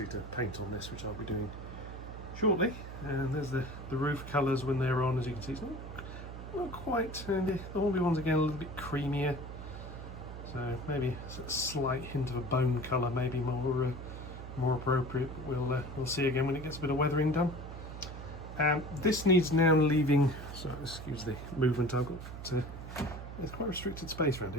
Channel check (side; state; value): right; noise; hum, 10 dB below the sound